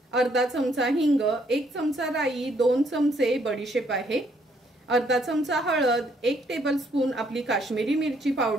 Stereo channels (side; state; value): both; normal; correlation 0.69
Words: अर्धा चमचा हिंग, 1 चमचा राई, 2 चमचे बडीशेप आहे, अर्धा चमचा हळद, 1 टेबलस्पून आपली काश्मीरी मिरची